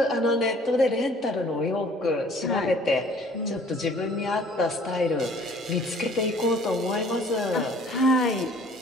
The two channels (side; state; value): both; normal; correlation 0.53